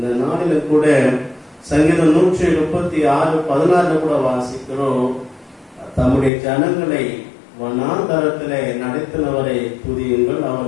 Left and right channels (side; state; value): right; drops out; at 6.3 s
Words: நாளில் கூட சங்கீதம் 136:16 கூட வாசிக்கிறோம், தம்முடைய ஜனங்களை வனாந்தரத்திலே நடத்தினவரை துதியுங்கள்,